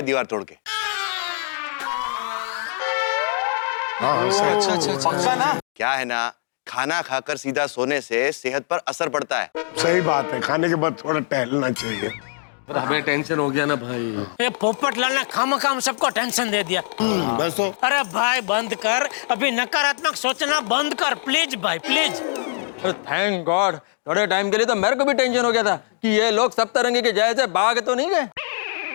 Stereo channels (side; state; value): right; silent; digital silence